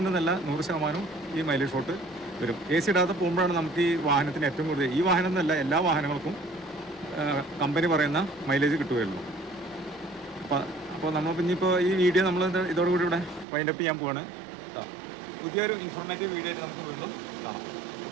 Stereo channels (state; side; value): drops out; left; at 13.5 s